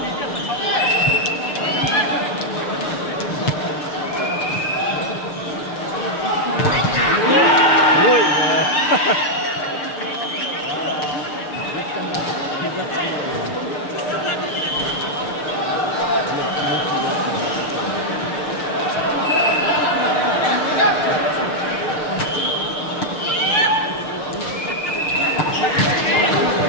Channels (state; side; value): late; right; 6.6 ms